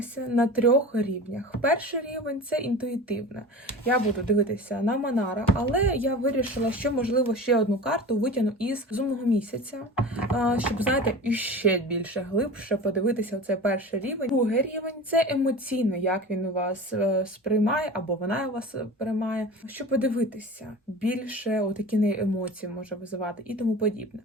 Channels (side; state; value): both; normal; correlation 0.34